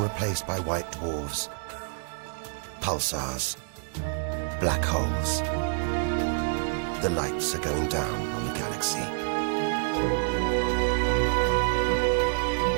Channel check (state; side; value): silent; left; 60 dB below the other